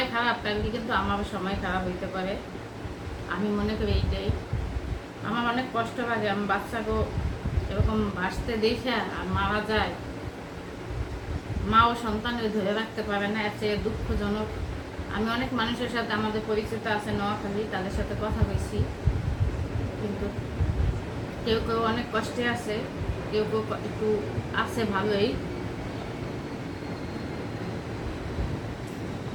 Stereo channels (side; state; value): both; identical; correlation 1.00